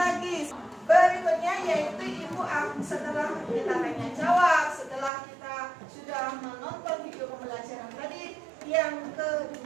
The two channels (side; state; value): left; drops out; at 5.1 s